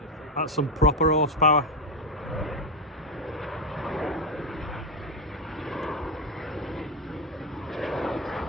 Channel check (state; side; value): normal; both; correlation 0.08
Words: That's some proper horsepower.